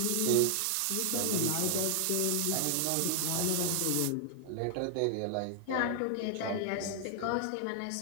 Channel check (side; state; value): both; different; correlation 0.00